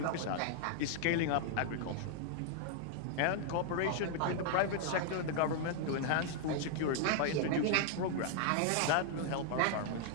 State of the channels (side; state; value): both; different; correlation 0.00